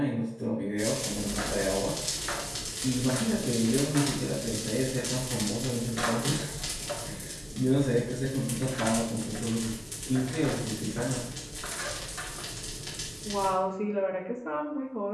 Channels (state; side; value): identical; both; correlation 1.00